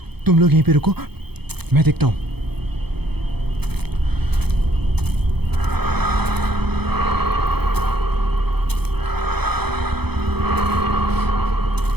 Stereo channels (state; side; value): late; left; 0.98 ms